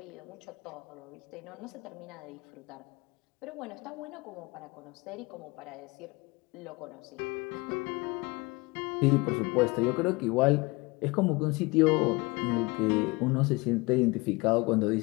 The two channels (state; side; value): quieter; right; 24.9 dB